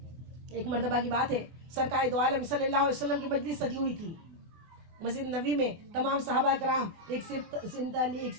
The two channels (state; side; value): late; left; 24 ms